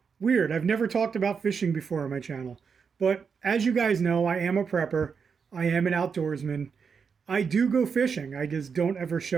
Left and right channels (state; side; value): quieter; left; 6.0 dB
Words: weird. I've never talked about fishing before on my channel. But as you guys know, I am a prepper. I am an outdoorsman. I do go fishing. I just don't ever